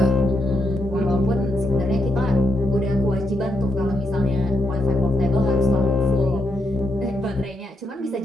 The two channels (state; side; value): normal; both; correlation 0.82